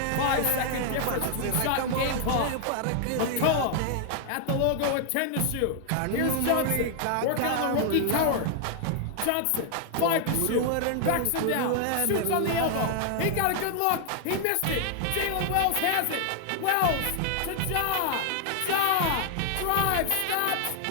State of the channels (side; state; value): both; different; correlation 0.00